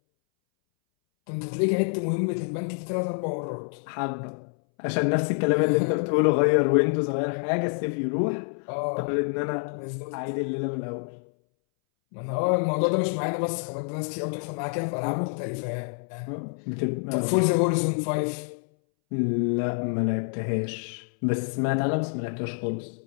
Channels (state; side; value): silent; right; 60 dB below the other